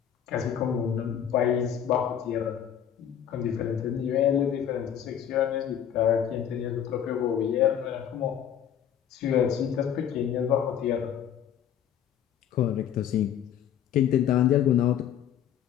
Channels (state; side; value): quieter; right; 9.6 dB